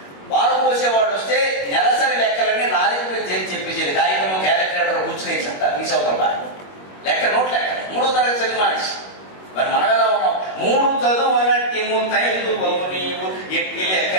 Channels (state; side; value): late; right; 21 ms